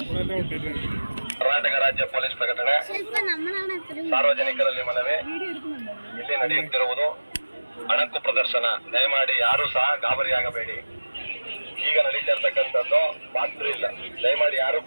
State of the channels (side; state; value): both; inverted; correlation -1.00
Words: ಕರ್ನಾಟಕ ರಾಜ್ಯ ಪೊಲೀಸ್ ಪ್ರಕಟಣೆ. ಸಾರ್ವಜನಿಕರಲ್ಲಿ ಮನವಿ, ಇಲ್ಲಿ ನಡೆಯುತ್ತಿರುವುದು ಅಣಕು ಪ್ರದರ್ಶನ. ದಯಮಾಡಿ ಯಾರು ಸಹ ಗಾಬರಿಯಾಗಬೇಡಿ. ಈಗ ನಡೀತಿರ್ತಕ್ಕಂಥದ್ದು ರಾತ್ರಿ ಇಲ್ಲ. ದಯಮಾಡಿ ಯಾರು